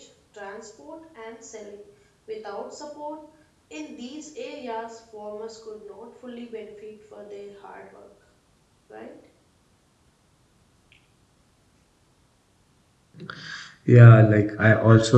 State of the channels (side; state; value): both; identical; correlation 1.00